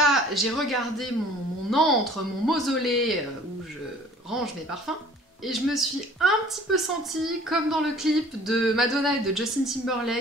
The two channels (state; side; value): normal; both; correlation 0.51